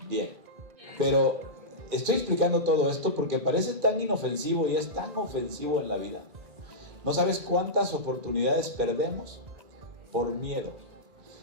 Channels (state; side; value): late; left; 2.4 ms